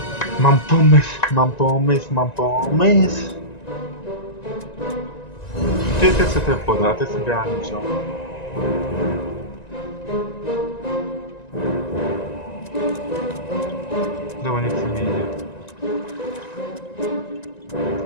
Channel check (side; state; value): right; late; 1.9 ms